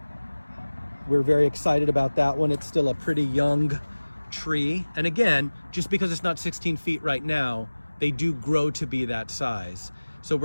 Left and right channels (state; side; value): inverted; both; correlation -1.00